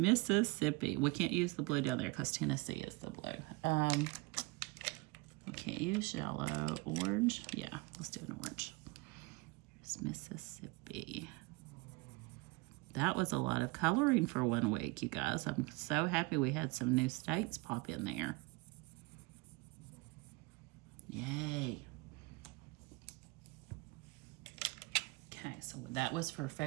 Mississippi. We can't use the blue down there because Tennessee is the blue. We can't use yellow. Orange? Yeah, let's do an orange. Here's Mississippi. That was a lot of coloring for 1 week, you guys. I'm so happy we had some new states pop in there. Yay. Okay, so that was for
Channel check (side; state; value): left; quieter; 24.5 dB